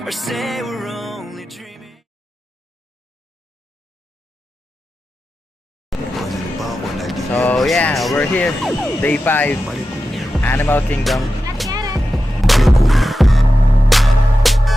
or say we're only dreaming. So yeah, we're here, day 5, Animal Kingdom.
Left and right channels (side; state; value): both; normal; correlation 0.92